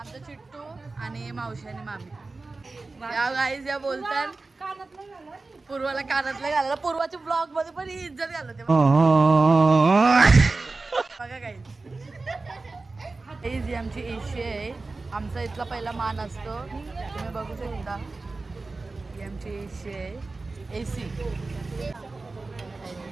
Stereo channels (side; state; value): left; quieter; 3.6 dB